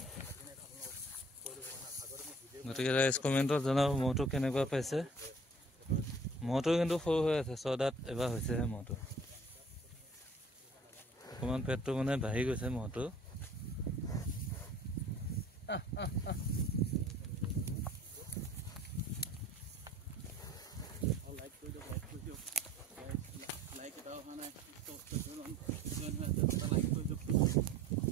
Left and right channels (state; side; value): normal; both; correlation 0.51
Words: গতিকে ৰাইজ কমেণ্টত জনাব মহটো কেনেকুৱা পাইছে মহটো কিন্তু সৰু হৈ আছে 6 দাঁত এবাৰ হৈছেহে মহটো অকণমান পেটটো মানে বাঢ়ি গৈছে মহটো